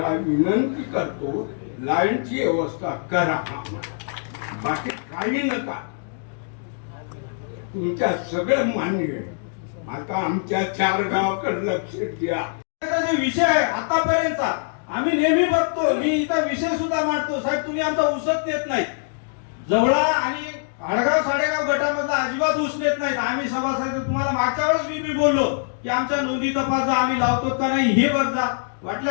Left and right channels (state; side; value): silent; right; digital silence